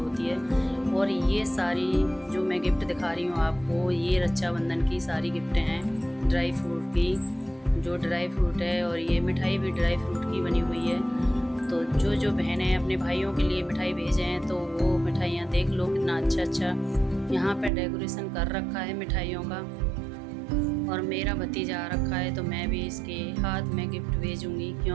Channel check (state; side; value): drops out; left; at 17.7 s